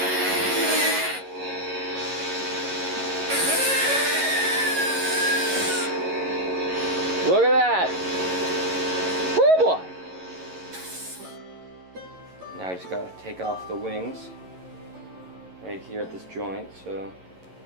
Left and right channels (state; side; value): late; left; 11 ms